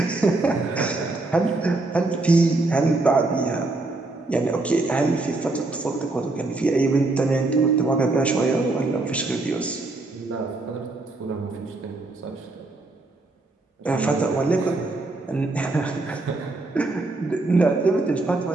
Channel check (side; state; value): left; quieter; 3.1 dB